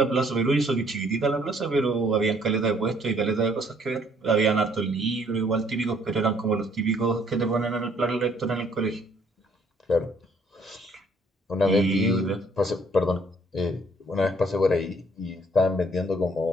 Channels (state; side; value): normal; both; correlation 0.63